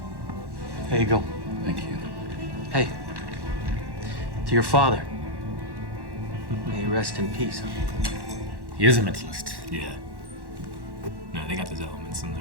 Here you go. Thank you. Hey, to your father. May he rest in peace. He is a mentalist. Yeah. No, they got those elements in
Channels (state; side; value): late; left; 1.1 ms